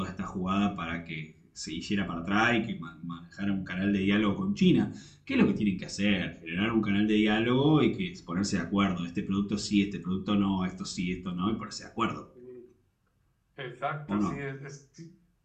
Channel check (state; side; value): identical; both; correlation 1.00